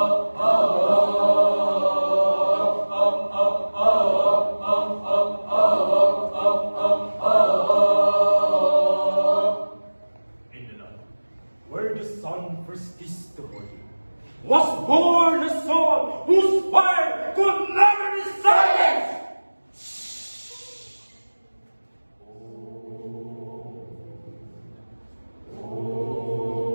Where the sun first kissed the body, was born a son whose fire could never be silenced!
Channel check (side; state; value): both; inverted; correlation -1.00